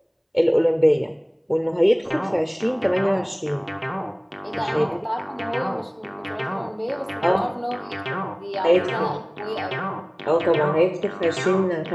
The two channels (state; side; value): identical; both; correlation 1.00